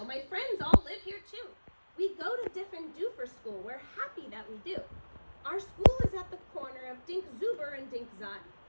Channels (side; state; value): both; inverted; correlation -1.00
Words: My friends all live here too. We go to Diffin' Doofer School. We're happy that we do. Our school is at the corner of Dink Zuber and Dink Zot.